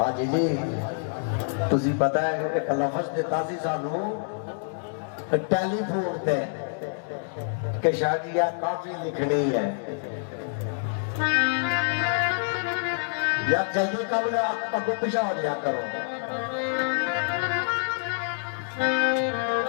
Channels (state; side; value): silent; right; digital silence